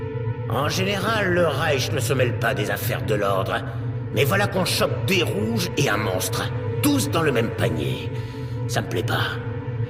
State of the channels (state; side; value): identical; both; correlation 1.00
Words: En général, le Reich ne se mêle pas des affaires de l'ordre. Mais voilà qu'on chope des rouges et un monstre. Tous dans le même panier. Ça me plaît pas.